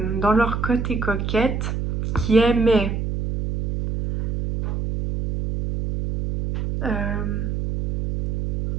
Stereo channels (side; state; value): right; noise; hum, 2 dB below the sound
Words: dans leur côté coquette, qui aimaient